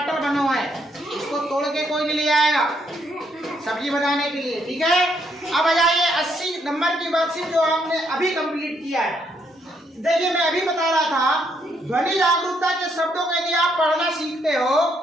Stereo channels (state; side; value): normal; both; correlation 0.73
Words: बनो है, इसको तोड़ के कोई नहीं ले आएगा सब्जी बनाने के लिए, ठीक है? अब आ जाइए 80 नंबर की वर्कशीट जो हमने अभी कंप्लीट किया है। देखिए मैं अभी बता रहा था ध्वनि जागरूकता के शब्दों को यदि आप पढ़ना सीखते हो